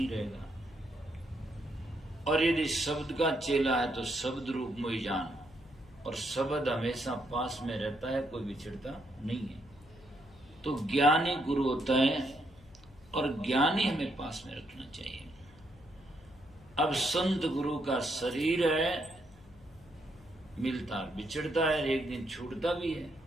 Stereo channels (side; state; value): left; noise; hum, 25 dB below the sound